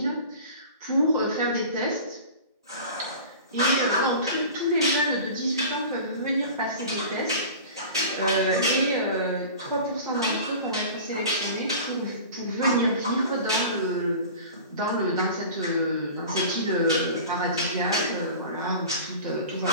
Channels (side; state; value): both; inverted; correlation -0.38